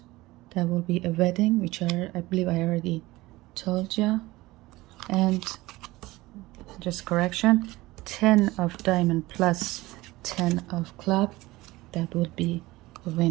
that will be a wedding, which I believe I already told you. And just correction, 10 of diamond plus 10 of club, that would be a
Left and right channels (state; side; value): quieter; left; 19.4 dB